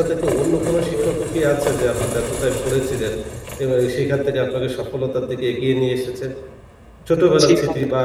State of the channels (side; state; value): both; identical; correlation 1.00